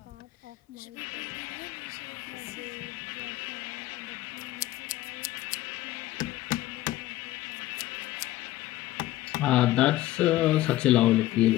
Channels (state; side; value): quieter; right; 15.9 dB